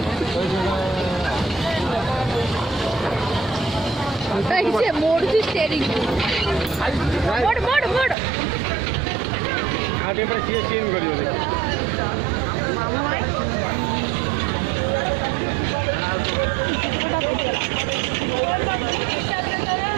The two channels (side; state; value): left; drops out; at 8.2 s